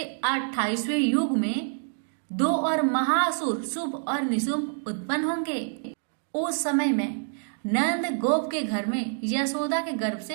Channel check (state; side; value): silent; left; 60 dB below the other